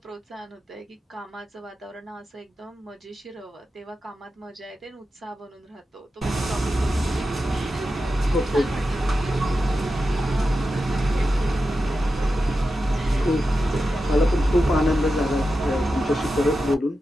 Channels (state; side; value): normal; both; correlation 0.91